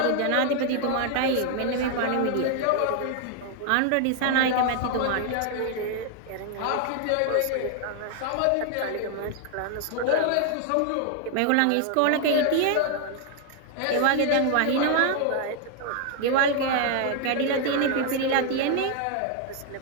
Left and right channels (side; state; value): both; different; correlation 0.00